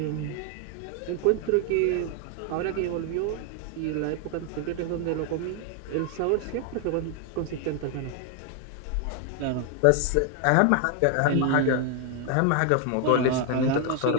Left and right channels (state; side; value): different; both; correlation 0.00